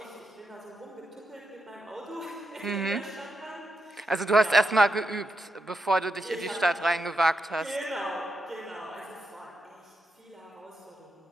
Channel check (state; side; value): normal; both; correlation 0.84